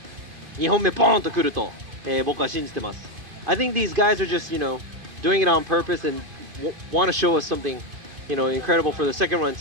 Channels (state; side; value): late; left; 2.5 ms